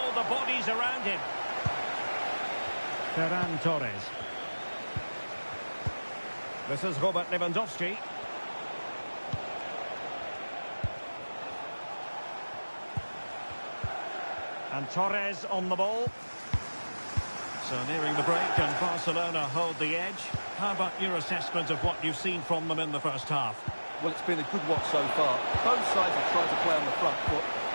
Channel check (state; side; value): inverted; both; correlation -1.00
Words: the bodies around him. Ferran Torres. This is Robert Lewandowski. And Torres on the ball. So nearing the break, and Barcelona hold the edge. How about your assessment of what you've seen from them in the first half? Well, it's been a good watch so far. Both sides have tried to play on the front foot,